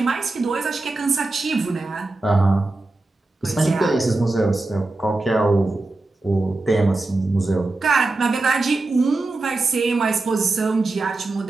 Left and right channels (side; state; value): left; quieter; 3.1 dB